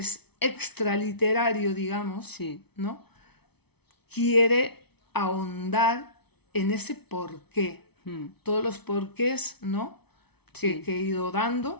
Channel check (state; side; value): late; right; 0.98 ms